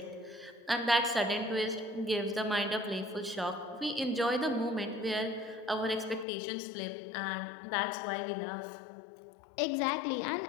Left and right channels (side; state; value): right; drops out; at 6.2 s